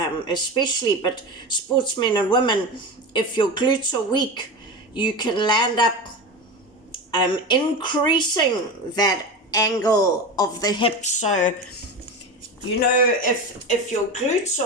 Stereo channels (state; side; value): normal; both; correlation 0.25